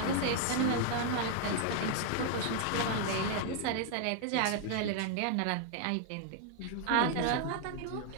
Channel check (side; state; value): both; different; correlation 0.00